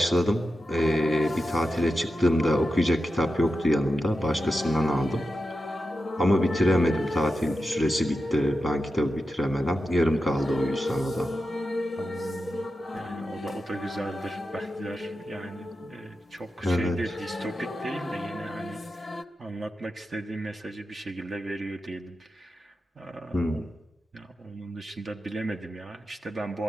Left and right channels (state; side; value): normal; both; correlation 0.90